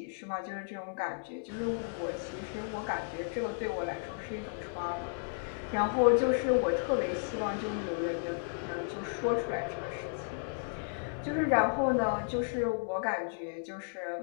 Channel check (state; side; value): silent; right; digital silence